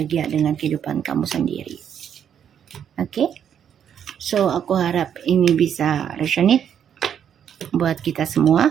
dengan kehidupan kamu sendiri. Oke, so aku harap ini bisa resonate buat kita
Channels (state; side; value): quieter; left; 8.8 dB